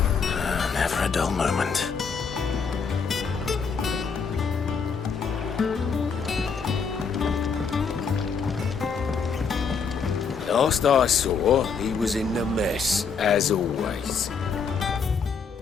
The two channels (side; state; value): right; quieter; 5.6 dB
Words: Never a dull moment. Last I saw, he was in the mess, as always.